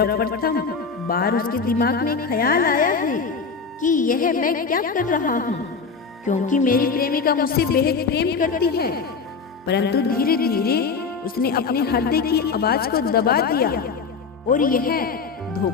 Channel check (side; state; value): right; quieter; 5.1 dB